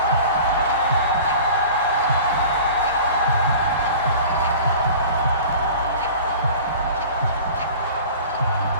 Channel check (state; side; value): inverted; both; correlation -0.41